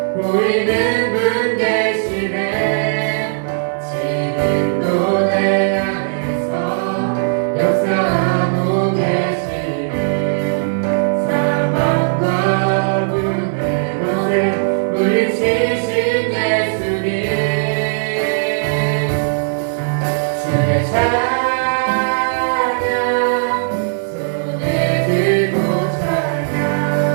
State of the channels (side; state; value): left; silent; digital silence